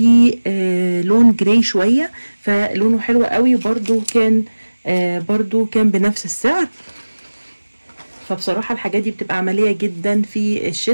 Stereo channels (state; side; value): inverted; both; correlation -1.00